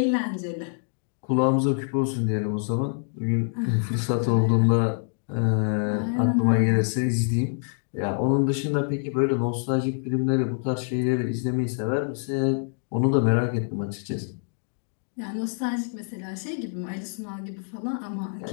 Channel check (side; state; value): right; silent; digital silence